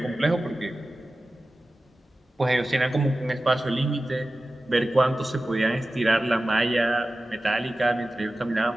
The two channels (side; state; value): both; normal; correlation 0.95